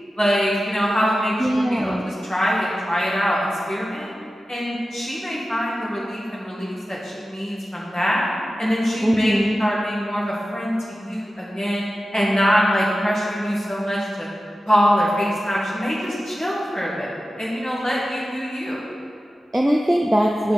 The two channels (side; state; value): both; normal; correlation 0.94